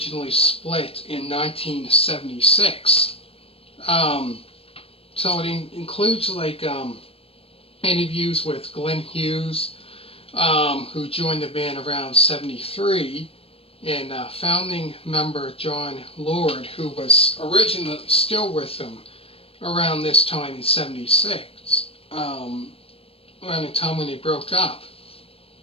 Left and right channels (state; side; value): late; right; 0.28 ms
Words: split in 1976. So it includes like interviews with Glenn Hughes, who joined the band around '73, and founding member John Lord, who was originally still with them around this time in '76, around the time when they broke up.